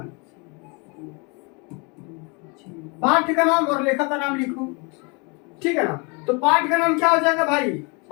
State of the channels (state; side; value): quieter; right; 30.9 dB